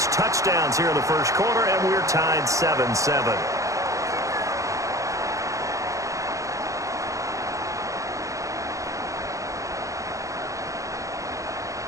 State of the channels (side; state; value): left; late; 0.15 ms